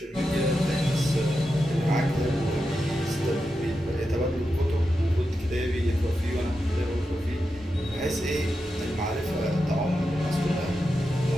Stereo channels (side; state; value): both; normal; correlation 0.89